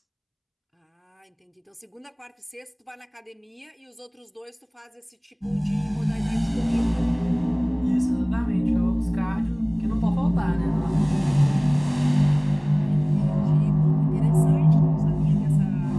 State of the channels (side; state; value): both; identical; correlation 1.00